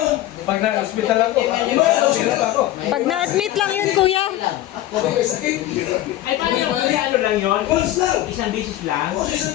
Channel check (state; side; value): quieter; right; 14.5 dB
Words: Pag na-hospital ako. Diba, hospital ako. Pag na-admit lang yun, kuya. Kasi may sakit. Ay, paano yung ano lang yun? Once lang. Isang bisis lang? Oo,